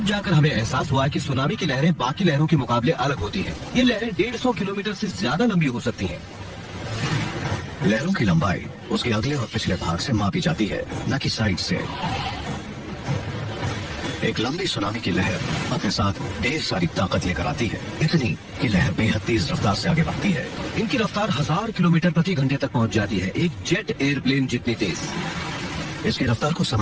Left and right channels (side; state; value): both; identical; correlation 1.00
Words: जाकर हमें एहसास हुआ कि सुनामी की लहरें बाकी लहरों के मुकाबले अलग होती हैं। ये लहरें 150 किलोमीटर से ज्यादा लंबी हो सकती हैं। लहरों की लंबाई उसके अगले और पिछले भाग से मापी जाती है, न कि साइड से। एक लंबी सुनामी की लहर अपने साथ ढेर सारी ताकत लेकर आती है, इतनी कि लहर बेहद तेज रफ्तार से आगे बढ़ती है। इनकी रफ्तार 1000 किलोमीटर प्रति घंटे तक पहुंच जाती है, एक जेट एयरप्लेन जितनी तेज। इसकी रफ्तार को